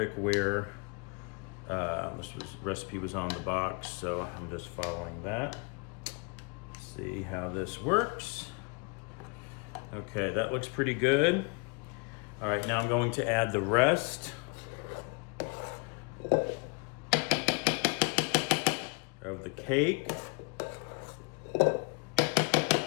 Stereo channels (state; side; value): quieter; right; 32.7 dB